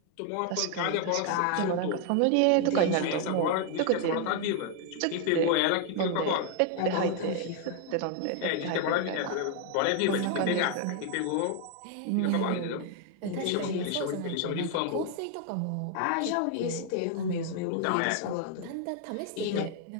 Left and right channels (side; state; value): both; different; correlation 0.00